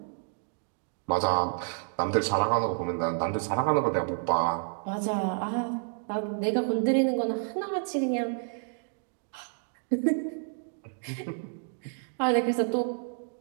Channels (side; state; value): left; silent; digital silence